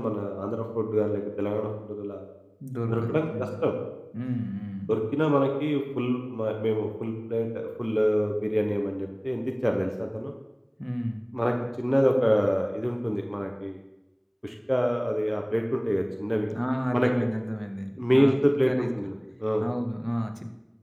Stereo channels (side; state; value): both; identical; correlation 1.00